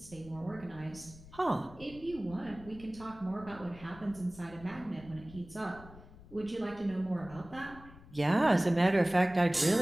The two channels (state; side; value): noise; left; rumble, 19 dB below the sound